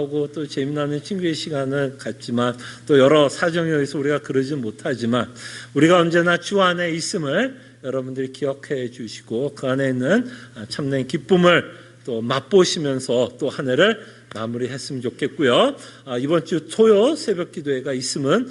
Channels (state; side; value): identical; both; correlation 1.00